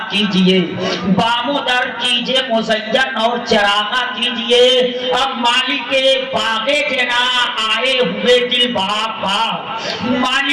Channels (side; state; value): both; identical; correlation 1.00